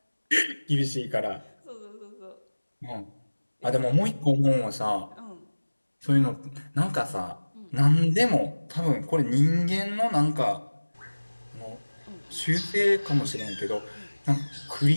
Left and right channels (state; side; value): inverted; both; correlation -1.00